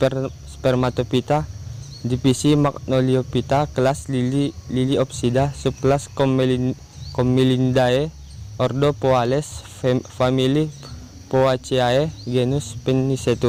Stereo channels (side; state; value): both; identical; correlation 1.00